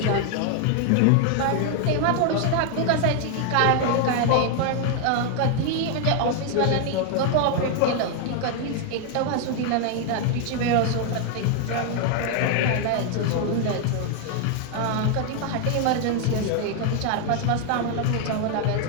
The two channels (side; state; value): both; different; correlation 0.00